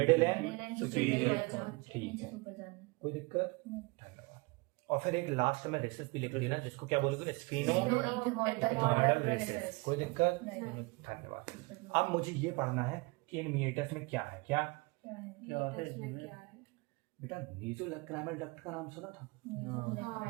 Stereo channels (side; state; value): left; quieter; 26.4 dB